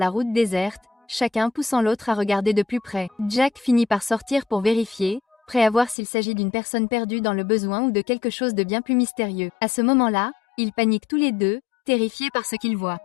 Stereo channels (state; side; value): drops out; right; at 6.0 s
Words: route déserte, chacun poussant l'autre à regarder de plus près. Jack finit par sortir pour vérifier, prêt à voir s'il s'agit d'une personne perdue dans le besoin ou de quelque chose de bien plus mystérieux. À ce moment-là, ils paniquent tous les deux, terrifiés par ce qu'ils voient.